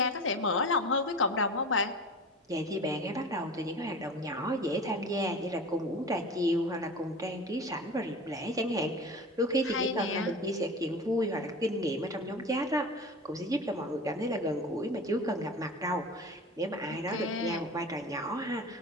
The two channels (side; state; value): both; normal; correlation 0.34